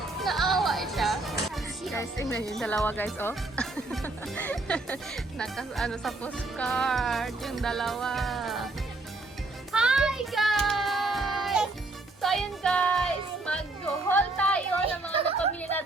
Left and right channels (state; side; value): quieter; left; 3.0 dB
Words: Naawa siya. Guys, tingnan yung dalawa, guys, oh. Sa postcard, yung dalawa. Hi, guys! So, ayun, guys, mag-haul tayo ng mga napamili